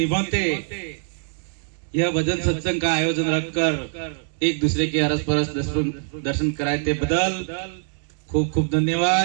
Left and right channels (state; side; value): silent; left; digital silence